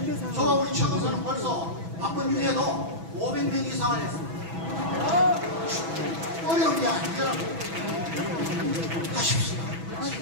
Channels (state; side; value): late; left; 6.1 ms